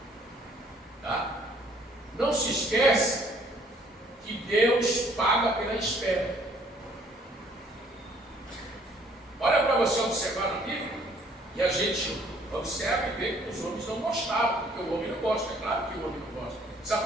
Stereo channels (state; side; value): normal; both; correlation 0.60